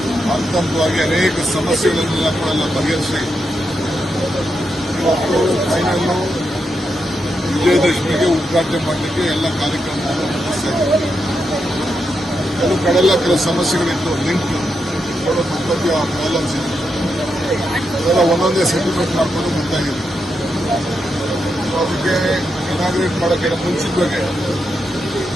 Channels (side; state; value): both; normal; correlation 0.84